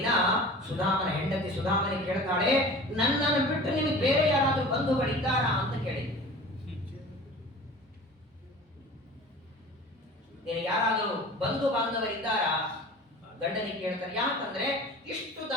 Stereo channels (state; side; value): normal; both; correlation 0.40